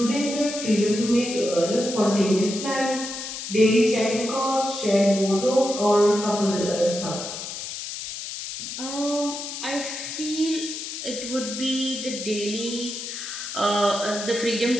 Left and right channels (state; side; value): noise; left; hiss, 7 dB below the sound